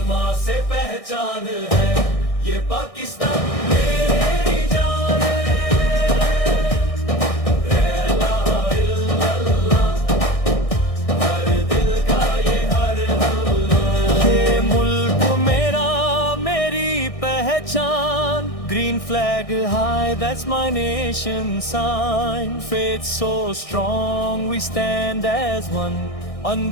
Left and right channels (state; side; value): late; right; 1.6 ms